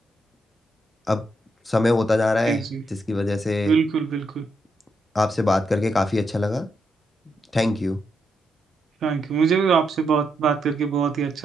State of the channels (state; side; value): normal; both; correlation 0.81